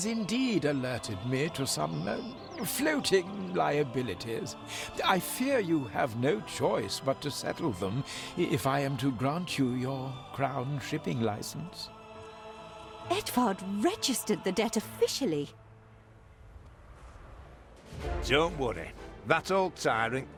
indeed alerted me to some floating liabilities. I fear you have no choice but to settle them if I am to grant you your crown shipping license. Edvard registered the debt officially. Don't worry. That old tyrant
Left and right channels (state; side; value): identical; both; correlation 1.00